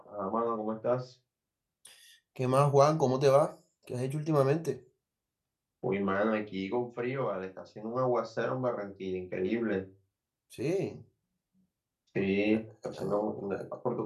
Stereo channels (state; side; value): identical; both; correlation 1.00